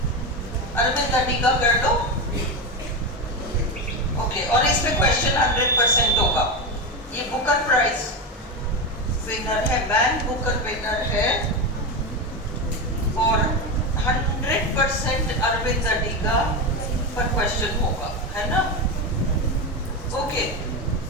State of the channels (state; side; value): normal; both; correlation 0.16